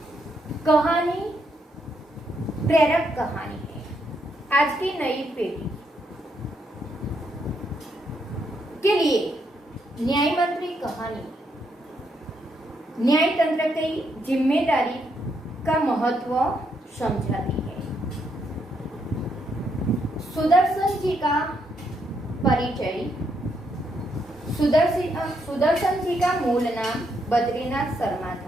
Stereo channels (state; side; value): normal; both; correlation 0.77